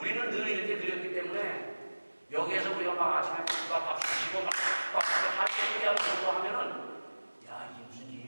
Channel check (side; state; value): both; inverted; correlation -1.00